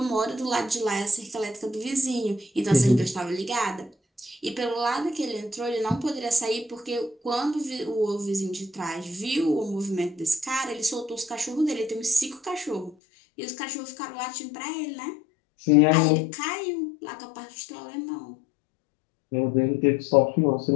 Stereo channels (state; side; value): drops out; right; at 13.0 s